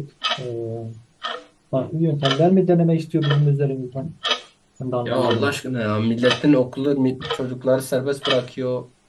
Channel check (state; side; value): identical; both; correlation 1.00